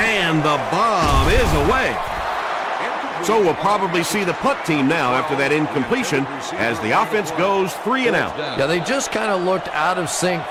the bomb is away. So we'll probably see the punt team now after that incompletion as the offense goes 3 and out. Yeah, they just kind of looked out of sync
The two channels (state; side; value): identical; both; correlation 1.00